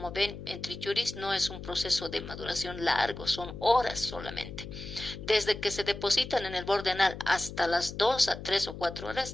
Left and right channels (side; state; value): left; noise; hum, 11 dB below the sound